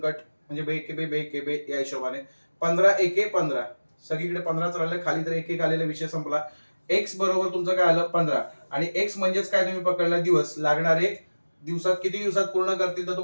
म्हणजे बे के बे या हिशोबाने. 15 एके 15, सगळीकडे 15च राहिले, खाली तर एक आलेला, विषय संपला. एक्स बरोबर तुमचं काय आलं? 15. आणि एक्स म्हणजेच काय? तुम्ही पकडला दिवस. लागणारे दिवसात किती दिवसात पूर्ण करतील? तर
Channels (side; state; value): both; inverted; correlation -1.00